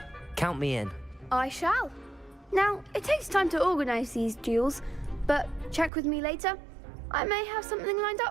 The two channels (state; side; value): drops out; left; at 5.9 s